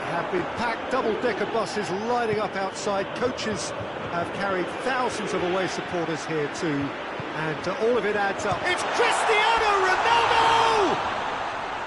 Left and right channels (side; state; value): both; identical; correlation 1.00